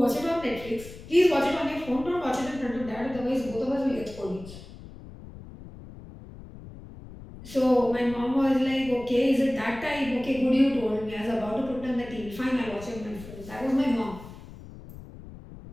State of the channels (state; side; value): noise; left; rumble, 16 dB below the sound